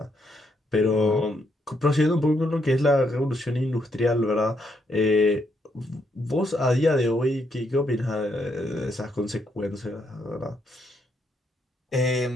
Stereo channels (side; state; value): both; normal; correlation 0.76